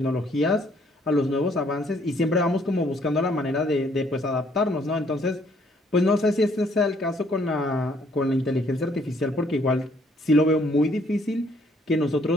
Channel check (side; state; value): both; normal; correlation 0.65